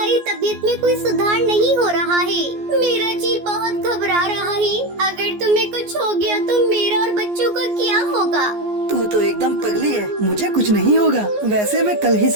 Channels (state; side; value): late; left; 14 ms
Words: तबीयत में कोई सुधार नहीं हो रहा है। मेरा जी बहुत घबरा रहा है। अगर तुम्हें कुछ हो गया तो मेरा और बच्चों का क्या होगा? तू तो एकदम पगली है। मुझे कुछ नहीं होगा। वैसे मैं कल ही